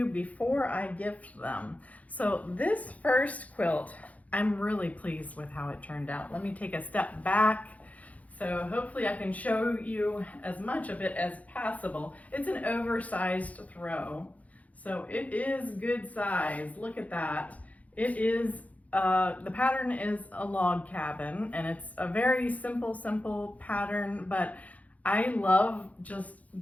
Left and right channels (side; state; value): right; late; 0.071 ms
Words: before I gift them. So this first quilt, I'm really pleased with how it turned out. Let me take a step back. So hopefully I can show you as much of it as possible. It's an oversized throw. So it is good size. Look at that. It is, the pattern is a log cabin and it's a very simple pattern, but I love just